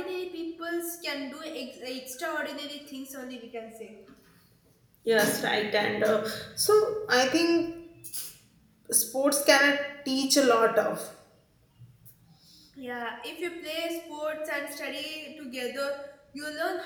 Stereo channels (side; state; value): both; identical; correlation 1.00